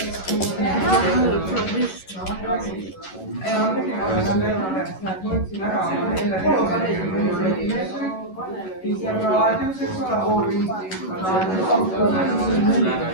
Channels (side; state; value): right; late; 11 ms